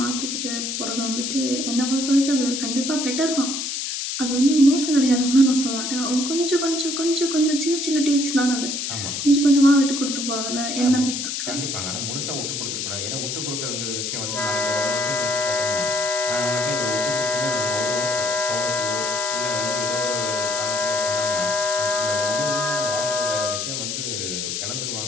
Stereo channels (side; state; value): left; noise; hiss, 3 dB below the sound